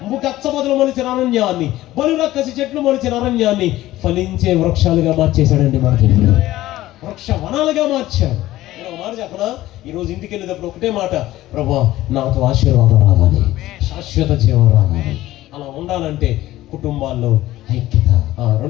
గచ్చ పొదలు మొలిచిన అరణ్యాన్ని, బలు రక్కసి చెట్లు మొలిచిన అరణ్యాన్ని ఫలించే వృక్షాలుగా మార్చేశాడండి. మన దేవుడు వృక్ష వనాలుగా మార్చాడు. నేను ఒక మాట చెప్పనా? ఈరోజు ఇంటికి వెళ్ళేటప్పుడు ఒకటే మాట, ప్రభువా నాతో ఆశీర్వాదం రావాలి, శాశ్వత జీవం రావాలి. అలా ఉండాలంటే కుటుంబాల్లో ఐక్యత,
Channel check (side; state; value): right; quieter; 15.7 dB